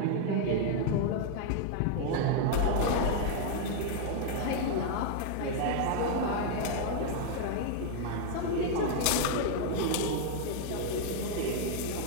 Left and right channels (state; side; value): different; both; correlation 0.00